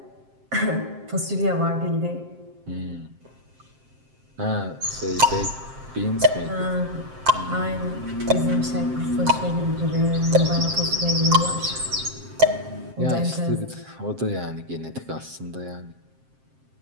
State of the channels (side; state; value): left; late; 7.6 ms